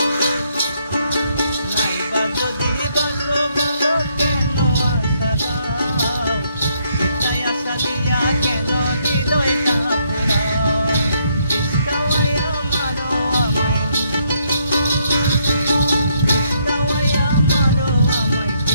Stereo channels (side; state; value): both; inverted; correlation -0.73